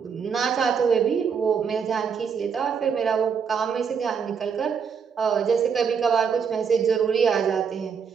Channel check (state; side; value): quieter; left; 6.5 dB